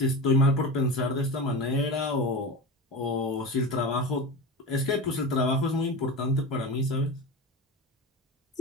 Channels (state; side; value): normal; both; correlation 0.26